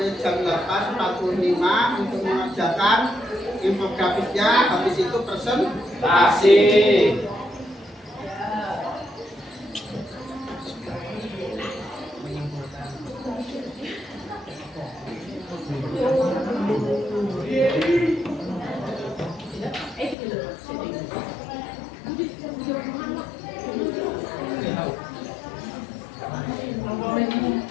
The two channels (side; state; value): right; drops out; at 20.2 s